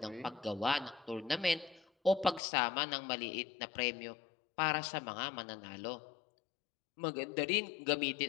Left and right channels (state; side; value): drops out; right; at 2.4 s